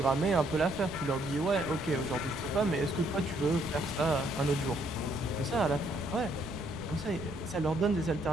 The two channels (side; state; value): right; noise; rumble, 14 dB below the sound